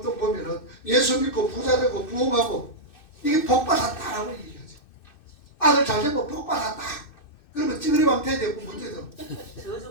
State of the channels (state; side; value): late; right; 2.6 ms